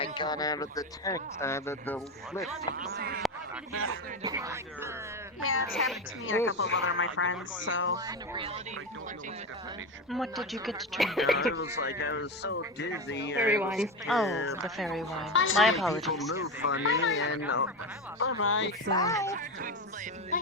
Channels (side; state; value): both; normal; correlation 0.17